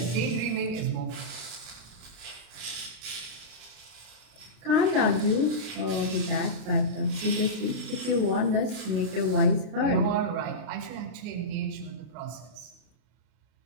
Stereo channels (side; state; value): left; late; 32 ms